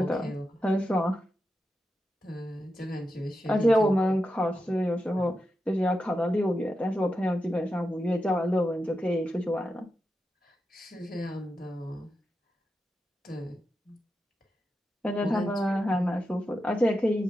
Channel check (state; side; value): normal; both; correlation 0.89